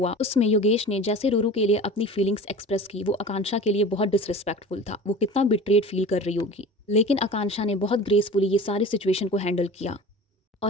उसमें योगेश ने जैसे रूरू के लिए अपनी फीलिंग्स एक्सप्रेस की, वो आकांक्षा के लिए बहुत डिसरिस्पेक्टफुल था। वो कितना बिट्रेड फील कर रही होगी, लेकिन आकांक्षा ने बहुत ग्रेसफुली ये सारी सिचुएशन को हैंडल किया,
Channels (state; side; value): normal; both; correlation 0.37